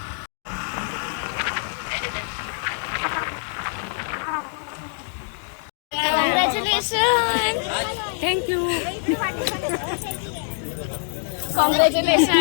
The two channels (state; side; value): silent; right; 60 dB below the other